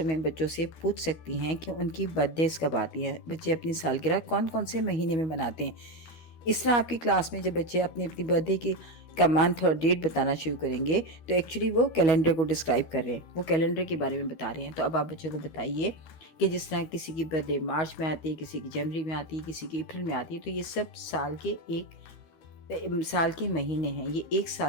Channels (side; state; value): right; late; 12 ms